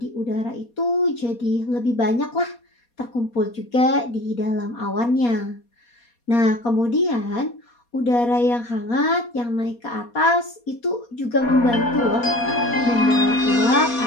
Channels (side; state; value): right; late; 4.2 ms